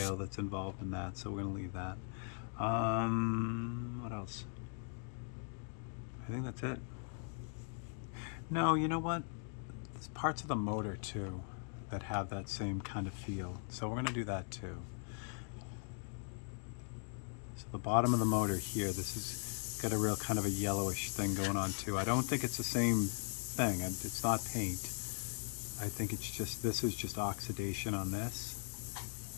that's involved in that, so we're going to leave that. What else? I think that's it. No, you know what? There's parts of the motor too that have that same kind of feel. So we're going to do that too. So the bottom of the motor here, this has got a real kind of a yellowish thing going on too. I don't think it's the same thing. It's not paint. I think it's just, this is just oxidation on this.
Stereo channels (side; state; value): right; silent; 51 dB below the other